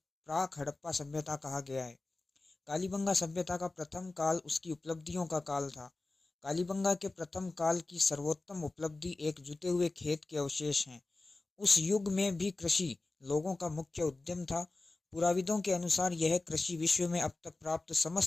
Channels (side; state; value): right; quieter; 3.2 dB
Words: हड़प्पा सभ्यता कहा गया है। कालीबंगा सभ्यता का प्रथम काल उसकी उपलब्धियों का काल था। कालीबंगा के प्रथम काल की सर्वोत्तम उपलब्धि एक जुते हुए खेत के अवशेष हैं। उस युग में भी कृषि लोगों का मुख्य उद्यम था। पुराविदों के अनुसार यह कृषि विश्व में अब तक प्राप्त